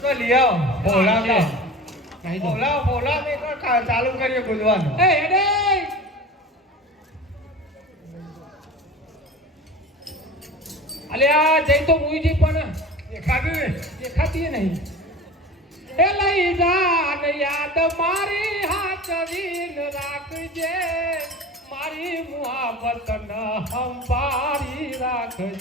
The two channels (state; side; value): normal; both; correlation 0.36